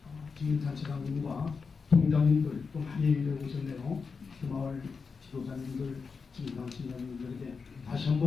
주민단체장님과 동장님들 또 많이 얘기를 오셨네요. 그 마을 지도자님들, 주민단체장님들에게 다시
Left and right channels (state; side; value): quieter; right; 5.1 dB